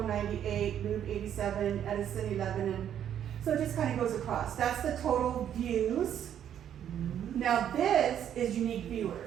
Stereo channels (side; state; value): left; quieter; 9.8 dB